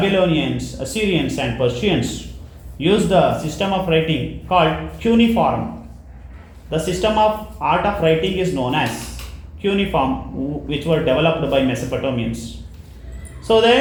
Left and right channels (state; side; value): identical; both; correlation 1.00